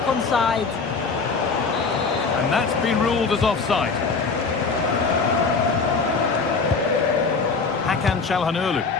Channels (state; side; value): quieter; right; 4.6 dB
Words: onside. And that's been ruled as offside. Hakan Çalhanoğlu.